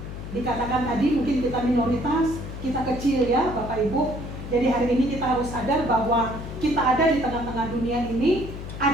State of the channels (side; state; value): left; noise; hum, 9 dB below the sound